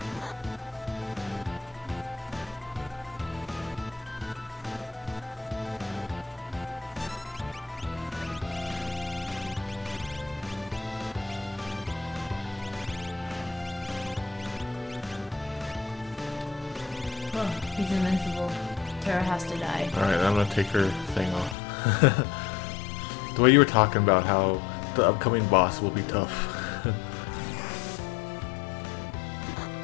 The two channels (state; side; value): drops out; right; at 21.6 s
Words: Oh, he's invincible. Terra has to die. Alright, I'm gonna take her thing off. The way you were talking about how the upcoming boss will be tough.